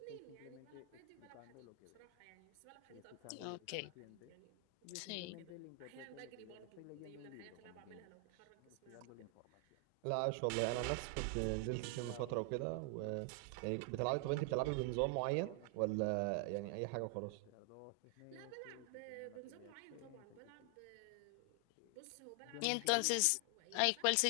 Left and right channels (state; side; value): different; both; correlation 0.00